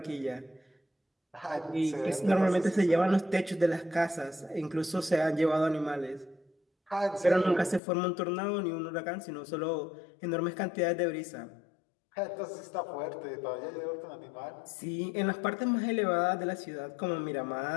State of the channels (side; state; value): right; drops out; at 7.8 s